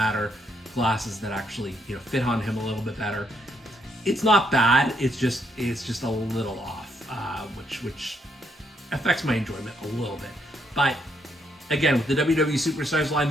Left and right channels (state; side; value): normal; both; correlation 0.74